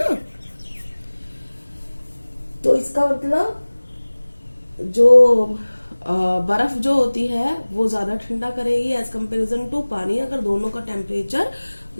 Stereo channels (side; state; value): both; inverted; correlation -1.00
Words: तो इसका मतलब जो बर्फ जो होती है वो ज्यादा ठंडा करेगी एज कंपेरिजन टू पानी, अगर दोनों का टेम्परेचर